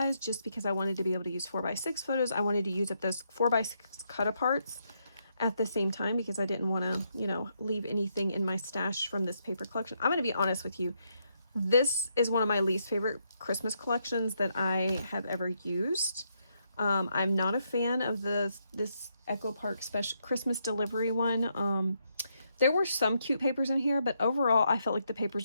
just because I wanted to be able to use 4x6 photos. I wanted to use up those 4x6 cut aparts at the same time because I didn't want to, leave anything in my stash from this paper collection. I'm going to be honest with you. This is one of my least favorite Christmas collections that I have ever used. I'm not a fan of this Echo Park special Christmas delivery one. There were some cute papers in here, but overall I felt like the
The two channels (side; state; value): both; inverted; correlation -0.78